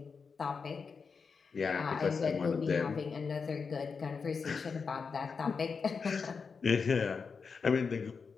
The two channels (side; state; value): right; quieter; 5.3 dB